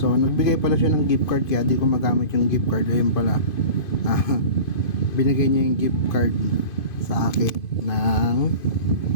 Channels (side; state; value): right; late; 2.5 ms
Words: nagbigay pala siya ng gift card, kaya di ko magamit yung gift card. Ayun pala, binigay niya yung gift card sa akin ng